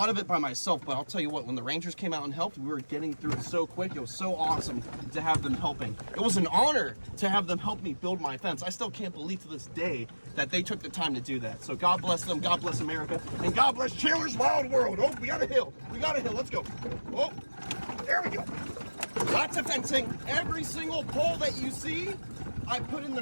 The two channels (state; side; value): inverted; both; correlation -1.00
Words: of it by myself, but I'll tell you what, when the Rangers came out and helped, we were getting through it so quick. It was so awesome to have them helping. It was an honor to have them help me build my fence. I still can't believe to this day that they took the time to do that. So God bless them, God bless America, and God bless Chandler's Wild World. Oh, we got a hill. We got a hill. Let's go. Oh, there we go. Lots of fencing. Every single pole that you see, I put in the